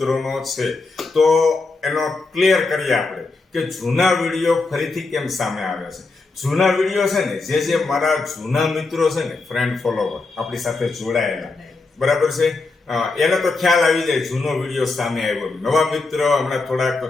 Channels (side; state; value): right; quieter; 3.7 dB